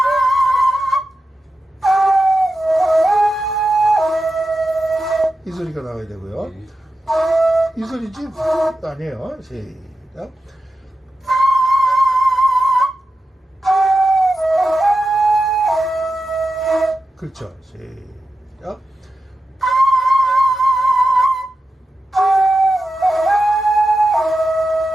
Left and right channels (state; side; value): normal; both; correlation 0.91